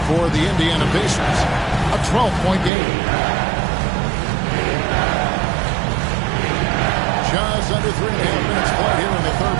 for the Indiana Pacers. A 12-point game. Just under 3.5 minutes played here in the third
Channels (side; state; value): left; drops out; at 2.7 s